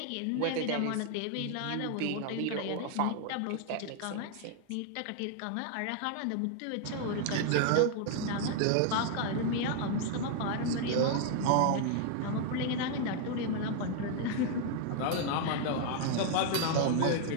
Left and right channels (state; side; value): different; both; correlation 0.00